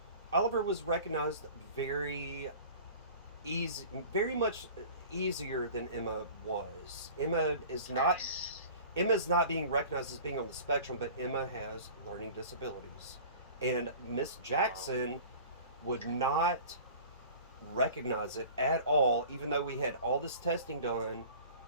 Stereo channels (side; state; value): both; inverted; correlation -0.42